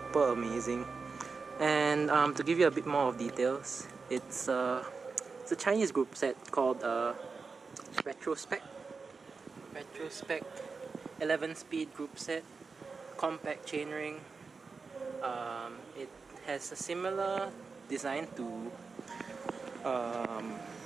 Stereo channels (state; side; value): quieter; left; 4.7 dB